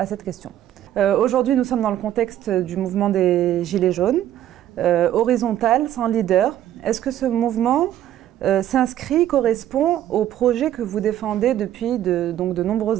cette question. Aujourd'hui, nous sommes dans le contexte du mouvement des Gilets jaunes, horizontal, sans leader. Est-ce que ce mouvement s'inscrit, correspond au projet que vous défendez depuis de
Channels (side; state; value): left; quieter; 12.0 dB